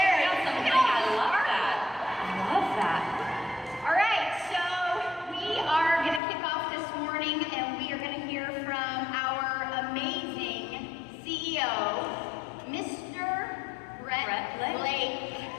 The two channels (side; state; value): right; drops out; at 6.2 s